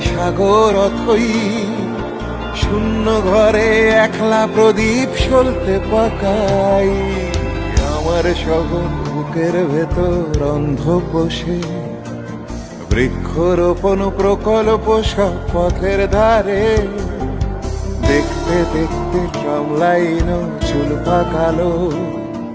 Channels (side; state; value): both; identical; correlation 1.00